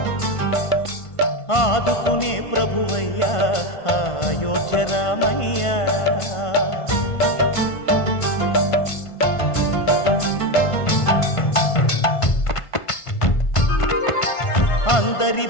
ఆదుకునే ప్రభువయ్య అయోధ్య రామయ్య. అందరి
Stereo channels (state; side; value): late; right; 1.5 ms